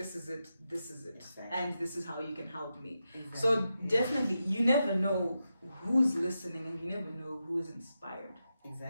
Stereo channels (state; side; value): inverted; both; correlation -0.88